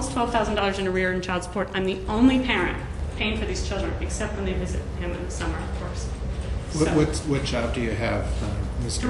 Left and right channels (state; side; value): identical; both; correlation 1.00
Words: $12,000 in arrear in child support. I'm the only parent paying for these children, except when they visit him in the summer, of course. What job do you have? Mr.